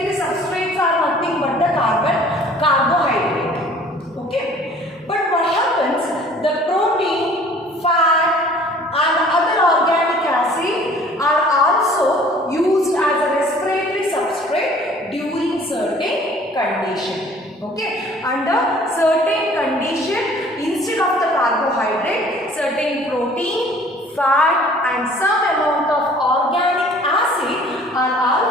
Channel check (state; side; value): normal; both; correlation 0.52